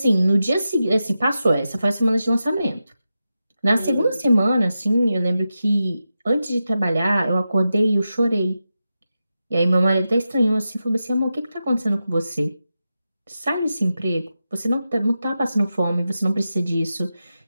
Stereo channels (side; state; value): both; inverted; correlation -0.90